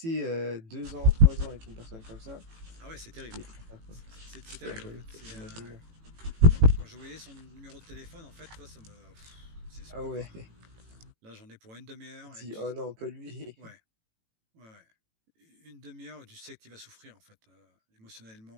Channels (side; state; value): left; late; 18 ms